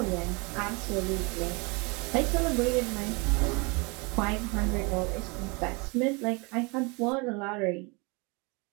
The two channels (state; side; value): quieter; left; 29.4 dB